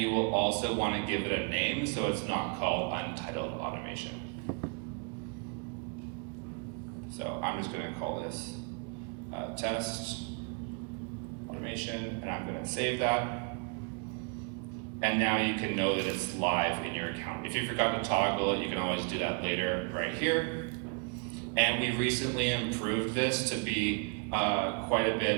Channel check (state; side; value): quieter; left; 37.3 dB